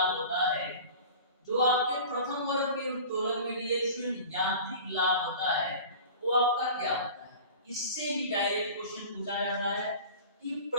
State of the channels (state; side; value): inverted; both; correlation -0.39